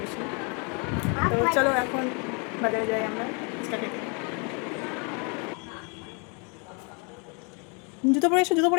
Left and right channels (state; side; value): quieter; right; 34.6 dB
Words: তো চলো এখন বাজারে যাই আমরা ফুচকা খেতে। জুতো পরে এসো, জুতো